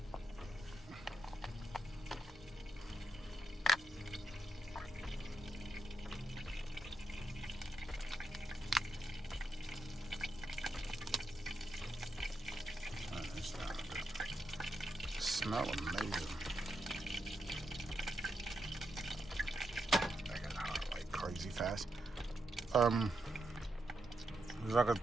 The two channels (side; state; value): both; normal; correlation 0.83